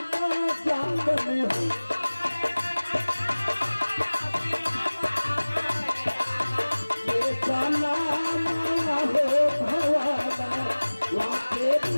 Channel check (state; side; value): inverted; both; correlation -1.00